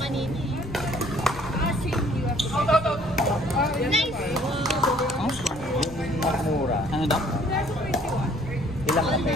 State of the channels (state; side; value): noise; left; rumble, 17 dB below the sound